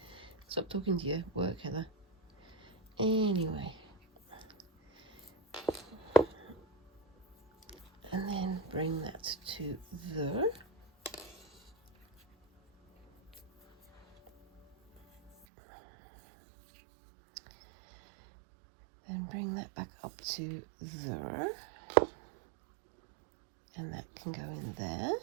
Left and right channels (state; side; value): drops out; left; at 15.3 s